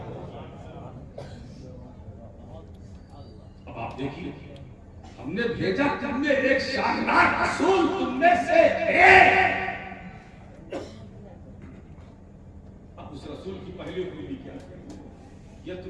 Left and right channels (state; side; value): identical; both; correlation 1.00